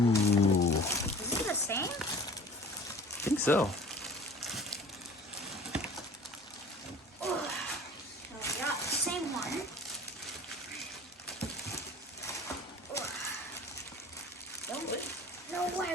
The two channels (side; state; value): both; normal; correlation 0.45